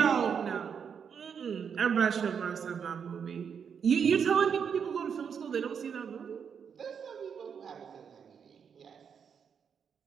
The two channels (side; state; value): left; quieter; 7.0 dB